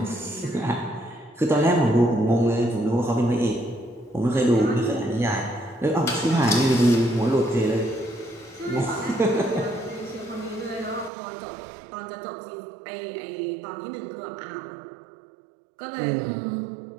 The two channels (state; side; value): drops out; left; at 11.1 s